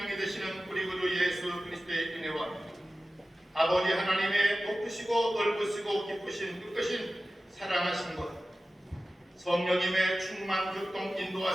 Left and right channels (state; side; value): normal; both; correlation 0.95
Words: 되시는 우리 구주 예수 그리스도의 은혜와 아버지 하나님의 높으시고 넓으시고 기쁘신 뜻하신 사랑하신 것 성령님의 충만 교통